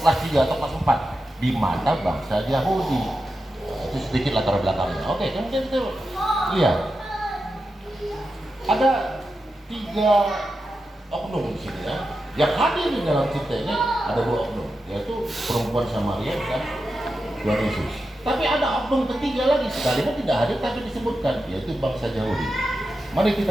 3 atau kelas 4 di mana bangsa Yahudi. Itu sedikit latar belakangnya. Oke, kemudian kita lihat ada 3 oknum di sini, ya. Yang hadir di dalam cerita ini ada 2 oknum, yaitu perempuan Samaria dan Tuhan Yesus. Tapi ada oknum ketiga lagi, sekalipun tidak hadir tapi disebutkan, yaitu bangsa Yahudi. Mari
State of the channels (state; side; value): normal; both; correlation 0.89